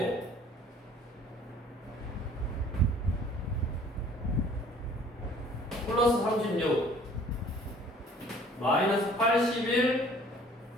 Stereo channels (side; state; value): both; normal; correlation 0.53